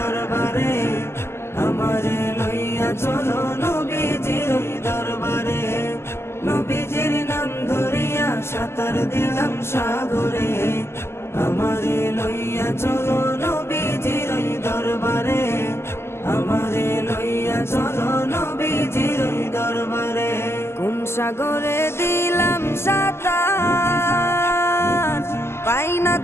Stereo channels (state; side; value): late; right; 0.12 ms